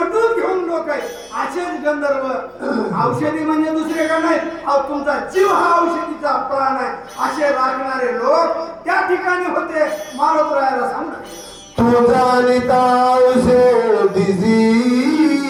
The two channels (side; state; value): both; identical; correlation 1.00